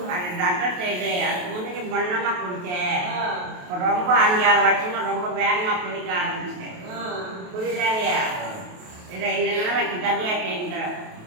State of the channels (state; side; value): late; left; 28 ms